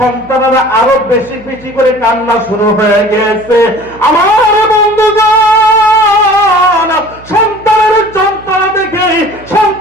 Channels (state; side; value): noise; right; hum, 22 dB below the sound